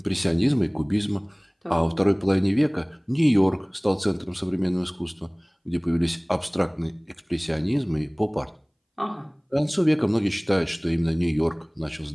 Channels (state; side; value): identical; both; correlation 1.00